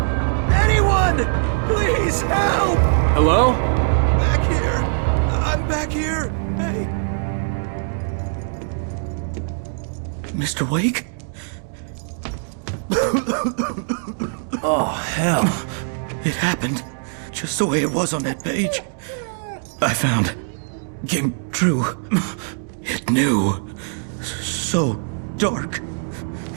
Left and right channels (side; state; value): left; silent; digital silence